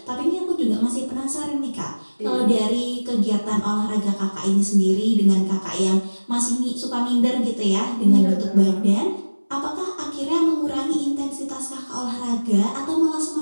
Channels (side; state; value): both; inverted; correlation -1.00